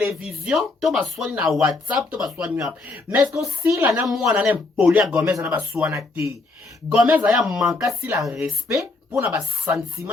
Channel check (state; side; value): quieter; right; 3.5 dB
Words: to baswani na WhatsApp to baswani wapi mais est-ce que si la na mwana na poli ya Gomez na baswana te Gomez aya manka si la respect pour na ba